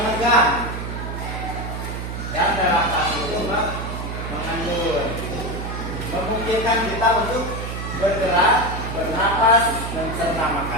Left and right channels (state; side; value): noise; right; hum, 6 dB below the sound